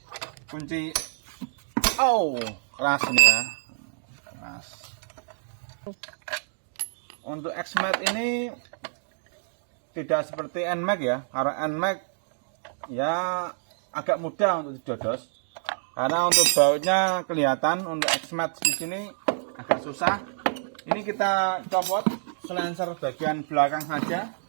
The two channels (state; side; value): silent; left; digital silence